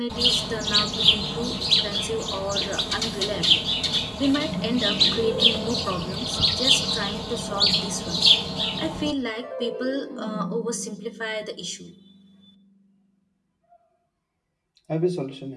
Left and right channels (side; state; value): both; identical; correlation 1.00